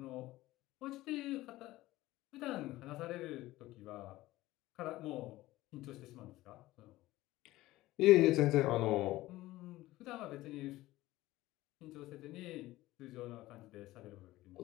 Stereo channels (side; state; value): right; quieter; 17.2 dB